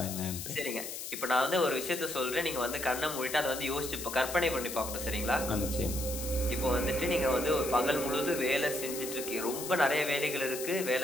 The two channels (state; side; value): noise; left; hiss, 7 dB below the sound